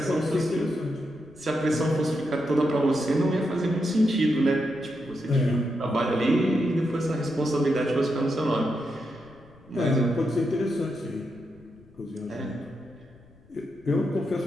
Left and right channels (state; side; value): noise; left; rumble, 27 dB below the sound